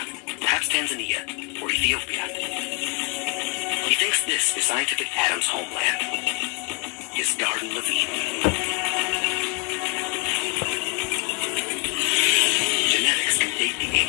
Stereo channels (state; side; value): quieter; right; 30.9 dB